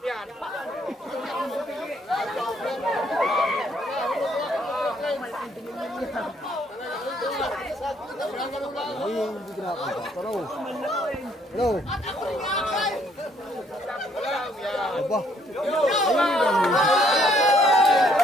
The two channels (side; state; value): both; normal; correlation 0.67